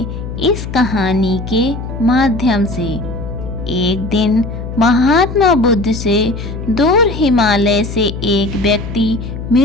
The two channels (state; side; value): noise; left; hum, 7 dB below the sound